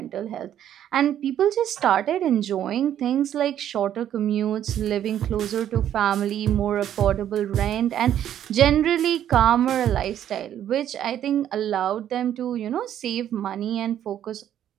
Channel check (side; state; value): left; quieter; 10.7 dB